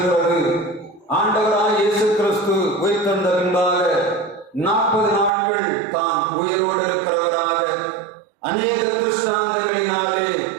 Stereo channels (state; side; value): drops out; left; at 5.3 s